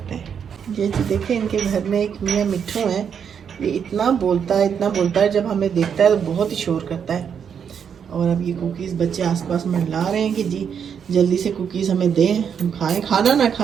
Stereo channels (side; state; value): left; quieter; 7.5 dB